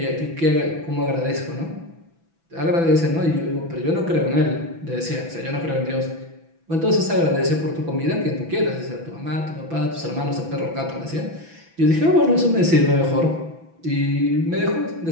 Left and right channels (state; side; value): late; left; 6.0 ms